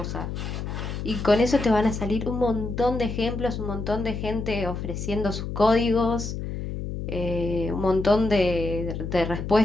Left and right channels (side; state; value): left; noise; hum, 5 dB below the sound